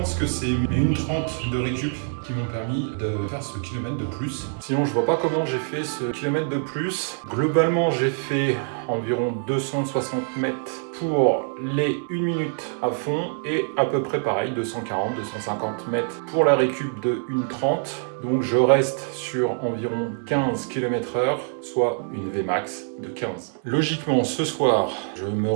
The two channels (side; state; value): left; silent; 62 dB below the other